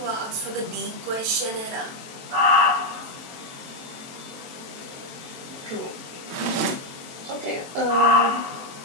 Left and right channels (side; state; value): left; late; 22 ms